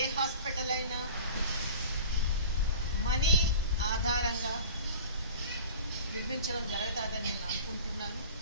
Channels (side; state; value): both; inverted; correlation -0.41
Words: హాస్పిటల్ అయినా మనీ ఆధారంగా నిర్మించడం జరుగుతుందని నేను అనుకుంటున్నాను.